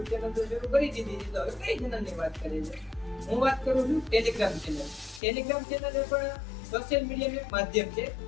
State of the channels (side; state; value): right; drops out; at 5.2 s